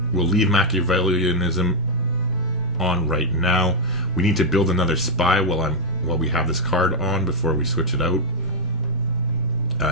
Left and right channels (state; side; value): normal; both; correlation -0.02